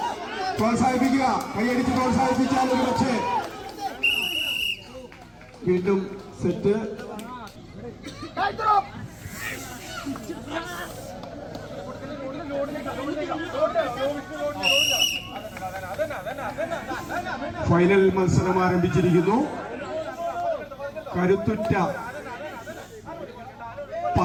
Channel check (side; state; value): both; identical; correlation 1.00